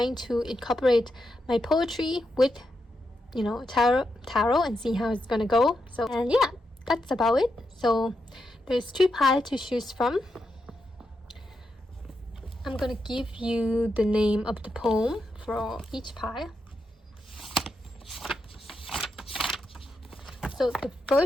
to incorporate my poetry with, tarot and see how it's gonna go. So, and yeah, that's about it. So there's 3 piles to choose from. I'm gonna give you the name of the poem for each pile. So the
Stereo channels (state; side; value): normal; both; correlation 0.84